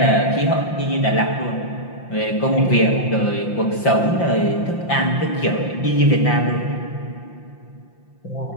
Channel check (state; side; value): late; right; 5.8 ms